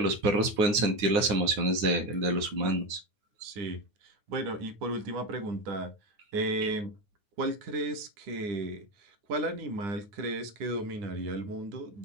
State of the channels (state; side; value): late; left; 9.7 ms